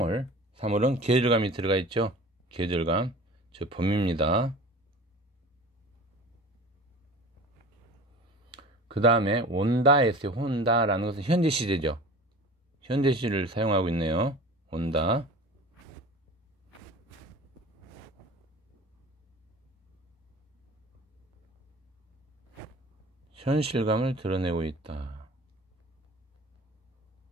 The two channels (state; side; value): normal; both; correlation 0.39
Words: 계절감이 들어가 있죠. 계절감, 즉 봄입니다. 그 다음에 온다 했어요. 온다라는 것은 현재 시제죠. 현재 시를 사용하고 있네요. 온다. 현실감을 드러내고 있다.